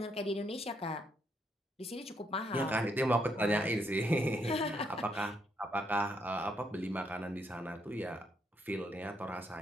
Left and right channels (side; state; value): both; normal; correlation 0.75